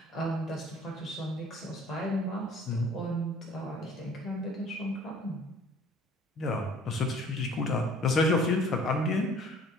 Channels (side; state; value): both; normal; correlation 0.52